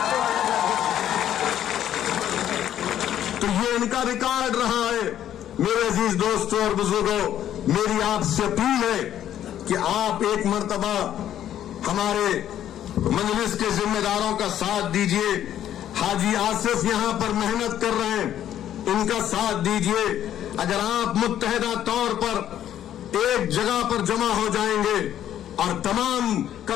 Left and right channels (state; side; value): quieter; right; 11.0 dB